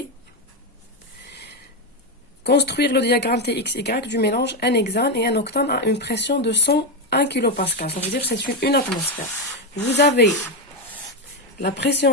Construire le diagramme TXY du mélange N-hexane et N-octane à une pression de 101 kPa. Ça veut dire que c'est une atmosphère. Vous avez la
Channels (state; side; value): normal; both; correlation 0.08